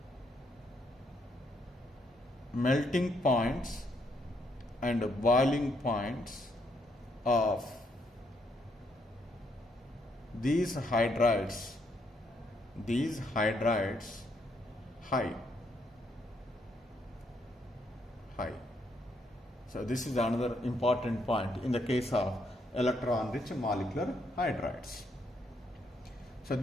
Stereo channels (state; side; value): normal; both; correlation 0.74